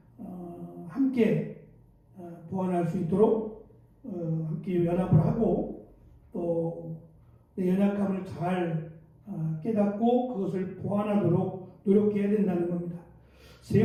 함께 보완할 수 있도록 함께 연합을 하고 또 내 연약함을 잘 깨닫고 그것을 보완하도록 노력해야 된다는 겁니다. 세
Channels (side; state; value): both; identical; correlation 1.00